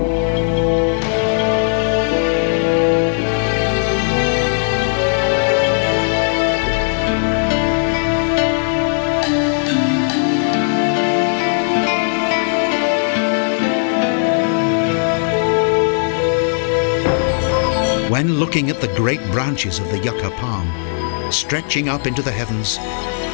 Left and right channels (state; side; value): silent; right; digital silence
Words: When looking at the great branches of the yucca palm, stretching up into the heavens,